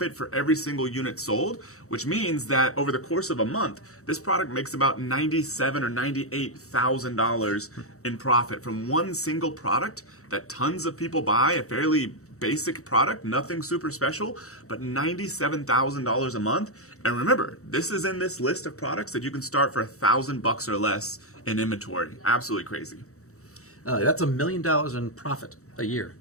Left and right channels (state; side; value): late; right; 0.64 ms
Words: for every single unit sold, which means that over the course of a month, this product makes about $97,000 or $98,000 in profit from one single product that tons of people buy, a fairly basic product, nothing super special, but $97,000 a month. And remember, this is in this list of products that you can start for $1,000 or less in inventory. Absolutely crazy. That's $1 million in profit a year